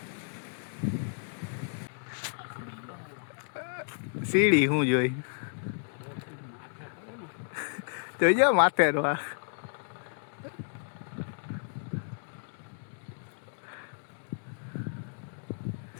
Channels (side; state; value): right; silent; digital silence